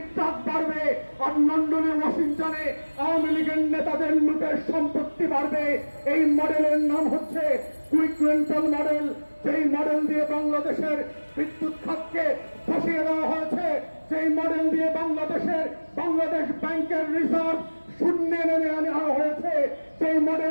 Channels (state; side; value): inverted; both; correlation -1.00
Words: ট্রাক বাড়বে, আর লন্ডনে ওয়াশিংটনে আওয়ামী লীগের নেতাদের লুটের সম্পত্তি বাড়বে। এই মডেলের নাম হচ্ছে কুইক রেন্টাল মডেল। যেই মডেল দিয়ে বাংলাদেশের বিদ্যুৎ খাতকে বসিয়ে দেওয়া হয়েছে, সেই মডেল দিয়ে বাংলাদেশ ব্যাংকের রিজার্ভ শূন্যে নেমে আনা হয়েছে, সেই